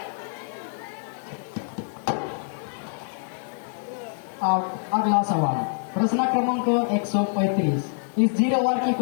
अब अगला सवाल प्रश्न क्रमांक 135 इस 0 ओवर की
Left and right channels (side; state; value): right; silent; 61 dB below the other